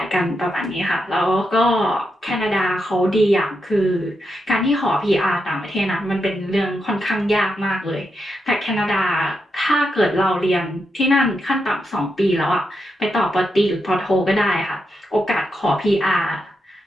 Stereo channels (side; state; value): both; normal; correlation 0.85